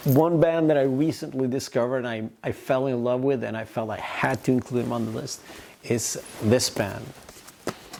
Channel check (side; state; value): both; identical; correlation 1.00